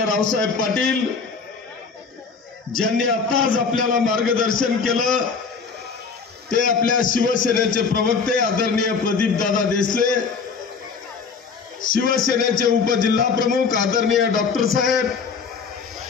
रावसाहेब पाटील, ज्यांनी आताच आपल्याला मार्गदर्शन केलं ते आपल्या शिवसेनेचे प्रवक्ते आदरणीय प्रदीपदादा देसले, शिवसेनेचे उपजिल्हा प्रमुख आदरणीय डॉक्टर साहेब,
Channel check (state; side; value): quieter; right; 5.3 dB